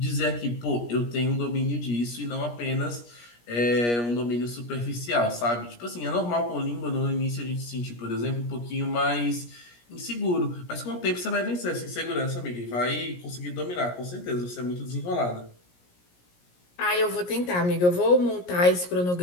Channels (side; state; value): right; late; 17 ms